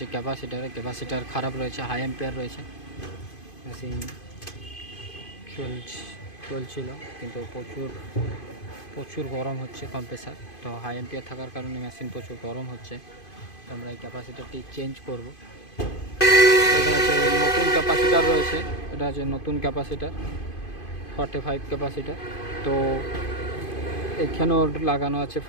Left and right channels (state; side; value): late; right; 2.5 ms